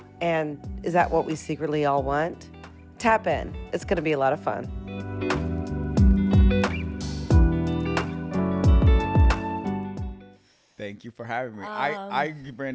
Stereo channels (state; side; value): identical; both; correlation 1.00